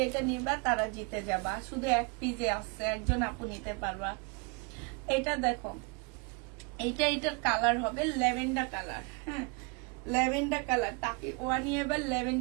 এটা নিবা তারা জিতে যাবা। শুধু এক পিসে আসছে, একজন আপু নিতে পারবা। এটা দেখো, এটার কালার হবে ল্যাভেন্ডার কালার। হ্যাঁ, ল্যাভেন্ডার কালার। তাকে ওয়ানি এবার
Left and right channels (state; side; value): quieter; left; 32.2 dB